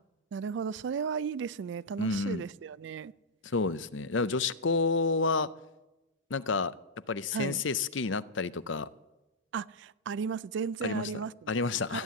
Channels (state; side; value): normal; both; correlation -0.06